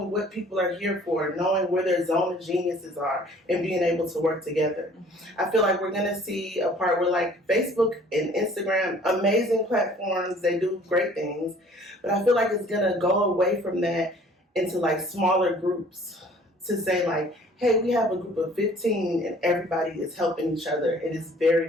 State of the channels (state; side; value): normal; both; correlation 0.53